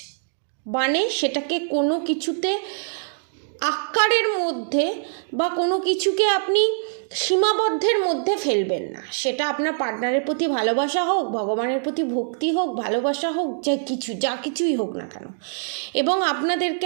মানে সেটাকে কোনো কিছুতে আকারের মধ্যে বা কোনো কিছুকে আপনি সীমাবদ্ধের মধ্যে ফেলবেন না। সেটা আপনার পার্টনারের প্রতি ভালোবাসা হোক, ভগবানের প্রতি ভক্তি হোক, ভালোবাসা হোক, যা কিছুই হোক না কেন। এবং আপনাদেরকে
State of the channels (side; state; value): left; silent; digital silence